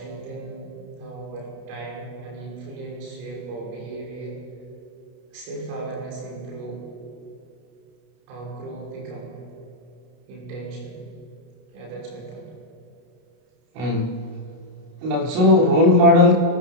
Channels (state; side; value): late; left; 33 ms